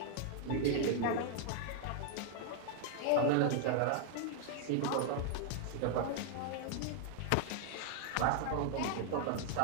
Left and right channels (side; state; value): both; different; correlation 0.00